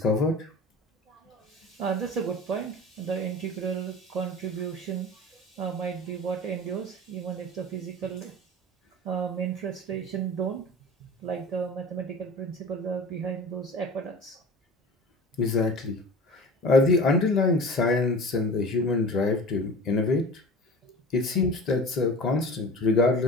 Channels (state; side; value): normal; both; correlation 0.37